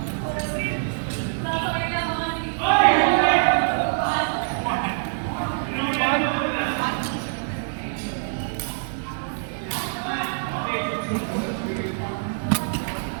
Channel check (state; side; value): silent; left; 62 dB below the other